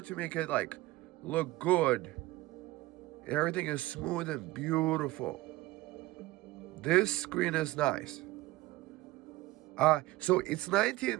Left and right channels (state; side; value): quieter; left; 18.6 dB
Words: to make it like look good. Everything is smooth and beautiful. This screen is nice. So it's